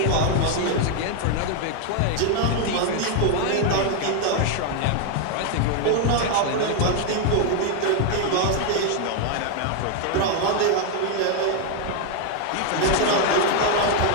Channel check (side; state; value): both; different; correlation 0.00